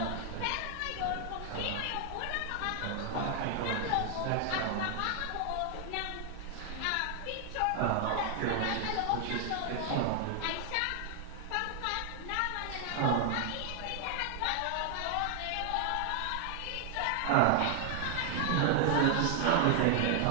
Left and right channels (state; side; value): different; both; correlation 0.00